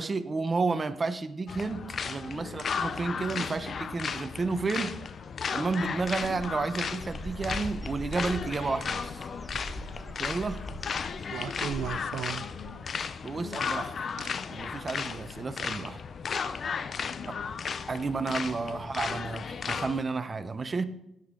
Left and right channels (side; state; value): both; normal; correlation 0.83